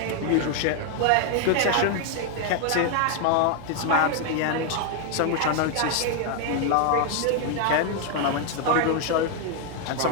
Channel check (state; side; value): different; both; correlation 0.00